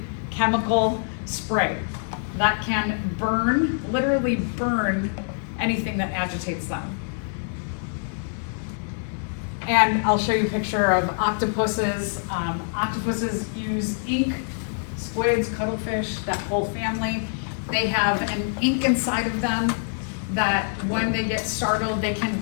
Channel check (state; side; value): silent; right; 58 dB below the other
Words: chemical spray that can burn, literally burn anything that agitates them. And I'll show you a picture of octopuses. Octopuses use ink, squids, cuttlefish, that whole family. They have an ink inside of them that when they get startled, they can